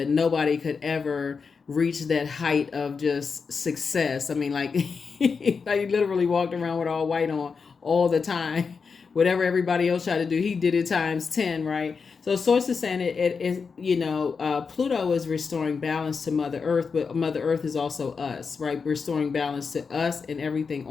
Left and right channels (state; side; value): quieter; right; 5.3 dB